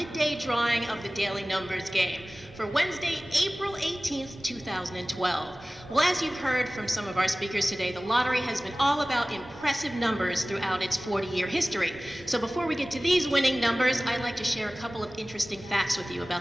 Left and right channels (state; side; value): normal; both; correlation 0.98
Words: drawing of the Daily Numbers Game for Wednesday, April 18th, 2012. Well, as you've heard from some of our speakers today, the lottery has been all about impressive numbers throughout its 40-year history. So before we get to these winning numbers, I'd like to share a couple of interesting facts with you